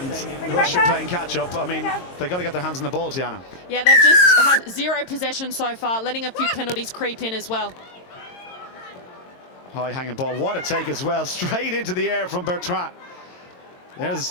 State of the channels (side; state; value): right; late; 22 ms